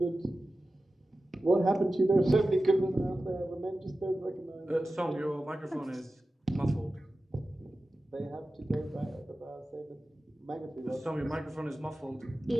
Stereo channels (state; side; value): normal; both; correlation 0.94